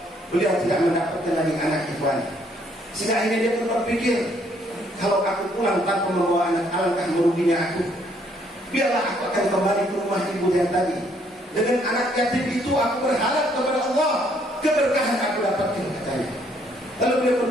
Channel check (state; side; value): normal; both; correlation 0.67